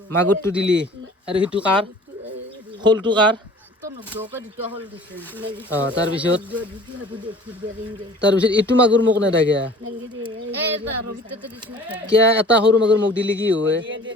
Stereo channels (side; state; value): both; normal; correlation 0.47